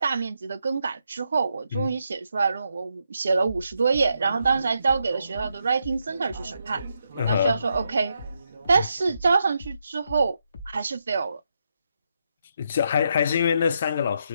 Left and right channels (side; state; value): both; inverted; correlation -0.81